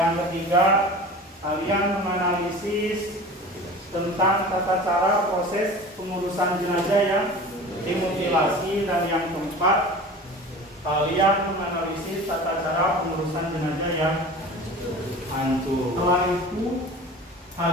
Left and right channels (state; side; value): normal; both; correlation 0.38